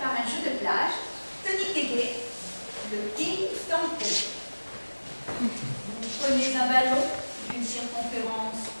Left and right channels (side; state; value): both; inverted; correlation -1.00